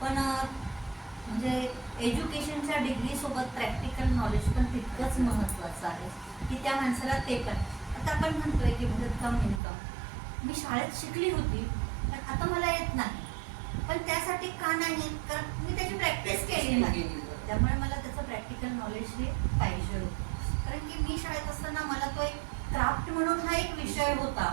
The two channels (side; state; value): left; drops out; at 9.6 s